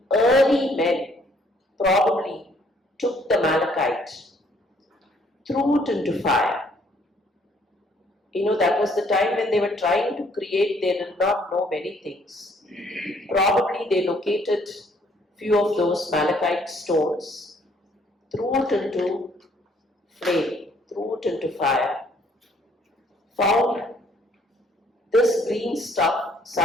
early men probably took the malachite, threw it into fire. That was the time when they were trying to create, they did not know many things. Probably they located few of those malachite stones, threw it into flame, threw it into fire, found this green stuff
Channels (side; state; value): both; normal; correlation 0.64